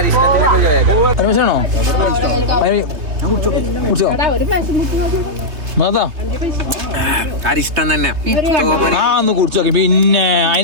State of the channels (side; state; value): left; late; 3.1 ms